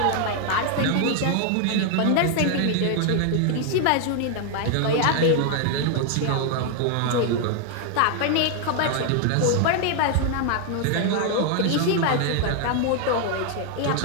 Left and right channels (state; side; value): different; both; correlation 0.00